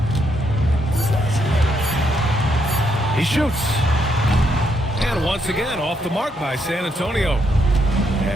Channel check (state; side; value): normal; both; correlation 0.76